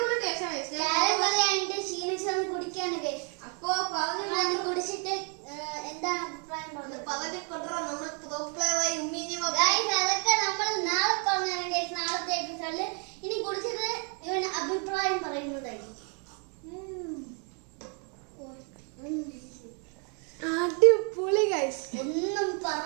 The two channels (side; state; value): left; quieter; 38.7 dB